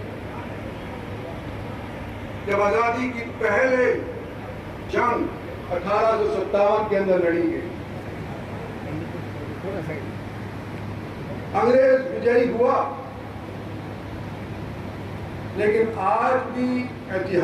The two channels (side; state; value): both; identical; correlation 1.00